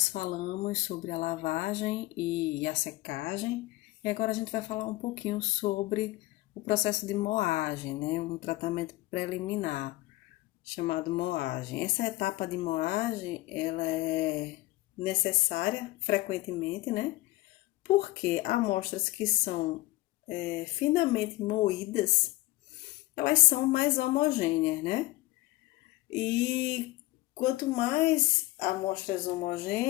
falamos sobre a lavagem e a secagem, e agora a gente vai falar um pouquinho sobre o processo de moagem, né? Um tratamento preliminar chamado moagem. Essa etapa de moagem, ela é necessária frequentemente, né? Porque amostras que são finamente moídas, elas são mais homogêneas, né? E quanto mais amostras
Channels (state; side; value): quieter; right; 19.2 dB